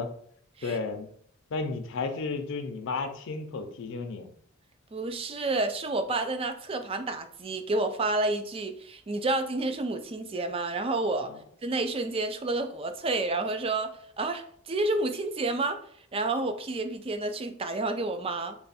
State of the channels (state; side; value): normal; both; correlation 0.21